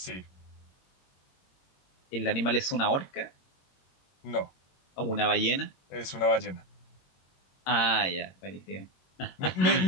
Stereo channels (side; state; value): right; late; 21 ms